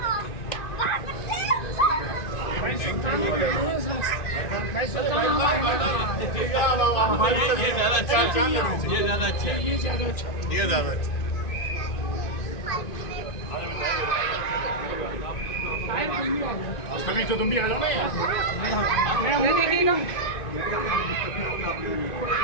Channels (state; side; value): late; right; 2.5 ms